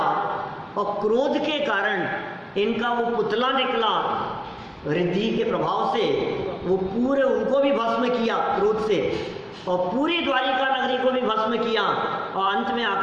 और क्रोध के कारण इनका वो पुतला निकला रिद्धि के प्रभाव से, वो पूरे उनको भी भस्म किया क्रोध से, और पूरी द्वारिका नगरी को भी भस्म किया, और अंत में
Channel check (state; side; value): identical; both; correlation 1.00